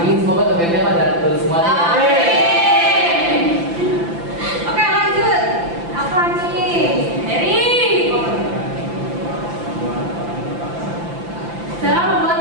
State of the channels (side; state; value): left; late; 5.9 ms